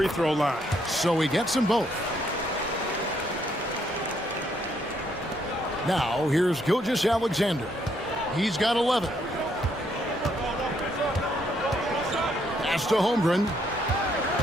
throw line. So he gets them both. Now, here's Gilgeous-Alexander. He's got 11. Pass to Holmgren.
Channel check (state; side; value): normal; both; correlation 0.72